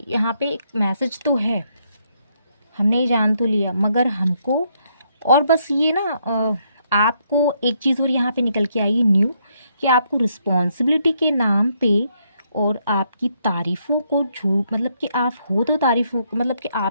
यहाँ पे एक मैसेज तो है, हमने ये जान तो लिया, मगर हमको और बस ये ना आपको एक चीज़ और यहाँ पे निकल के आई न्यू, कि आपको रिस्पॉन्सिबिलिटी के नाम पे और आपकी तारीफ़ों को झूठ, मतलब कि आप हो तो तारीफ़ों, मतलब कि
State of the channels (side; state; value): both; inverted; correlation -0.74